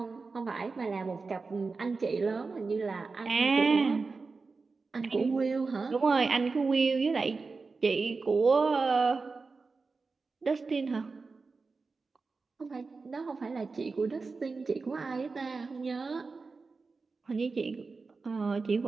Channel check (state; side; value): quieter; left; 4.2 dB